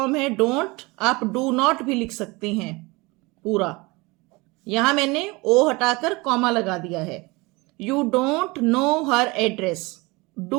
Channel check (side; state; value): left; quieter; 24.5 dB